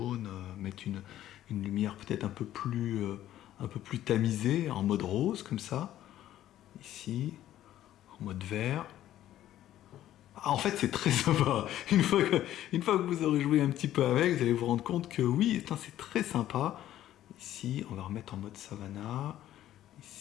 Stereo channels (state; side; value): quieter; right; 12.7 dB